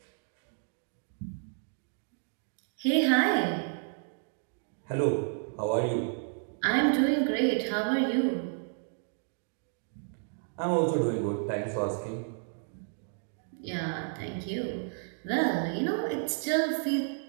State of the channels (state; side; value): silent; left; 57 dB below the other